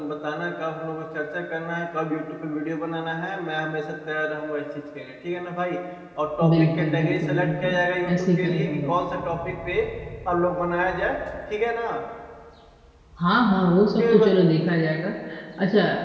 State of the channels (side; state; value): both; identical; correlation 1.00